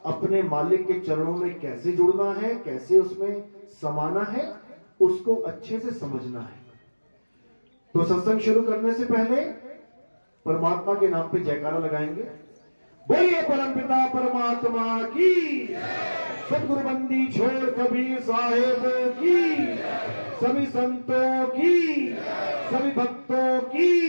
अपने मालिक के चरणों में कैसे जुड़ना है, कैसे उसमें समाना है, उसको अच्छे से समझना है। तो सत्संग शुरू करने से पहले परमात्मा के नाम पे जयकारा लगाएंगे। बोलिए परमपिता परमात्मा की, सदगुरु बंदी छोड़ कबीर साहेब की, सभी संतों की, सभी भक्तों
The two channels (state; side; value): inverted; both; correlation -1.00